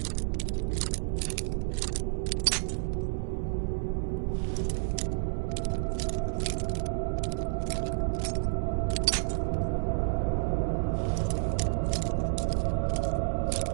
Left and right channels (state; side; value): silent; left; 58 dB below the other